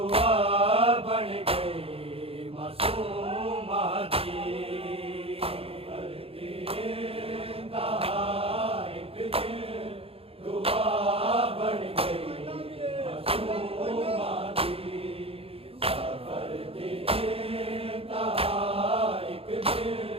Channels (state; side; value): late; left; 0.28 ms